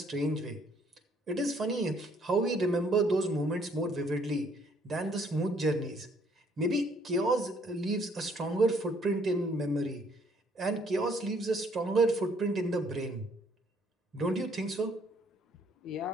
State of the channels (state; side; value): normal; both; correlation 0.65